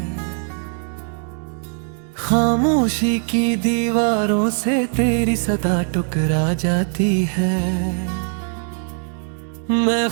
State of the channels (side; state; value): left; silent; 62 dB below the other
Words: खामोशी की दीवारों से तेरी सदा टुकरा जाती है। मैं